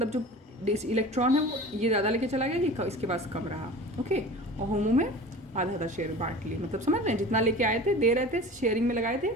जो इलेक्ट्रॉन है वो ये ज़्यादा लेके चला गया, ये इसके पास कम रहा। ओके, और होमो में आधा आधा शेयर बांट लिए, मतलब समझ रहे हैं, जितना लेके आए थे, दे रहे थे, शेयरिंग में लगाए थे,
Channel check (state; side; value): normal; both; correlation 0.38